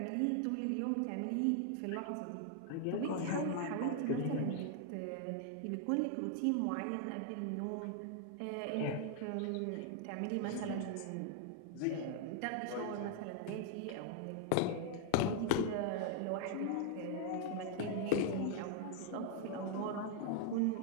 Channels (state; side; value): different; both; correlation 0.00